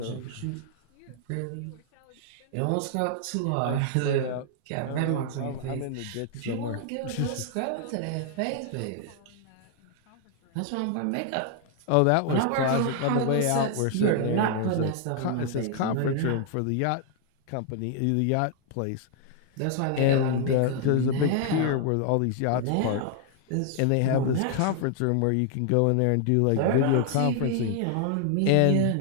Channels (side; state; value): both; different; correlation 0.00